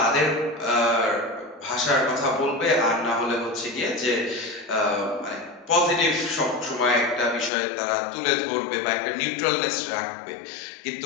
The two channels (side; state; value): right; drops out; at 7.5 s